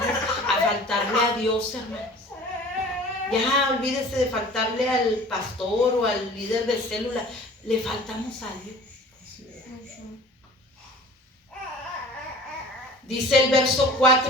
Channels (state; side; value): normal; both; correlation 0.44